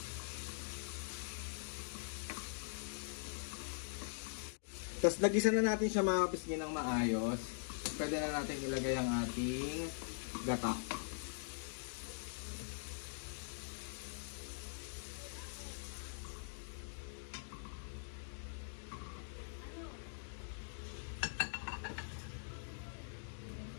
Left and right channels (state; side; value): silent; right; digital silence